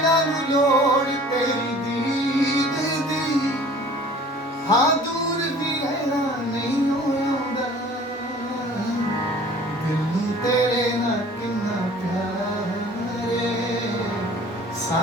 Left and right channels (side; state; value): both; normal; correlation 0.48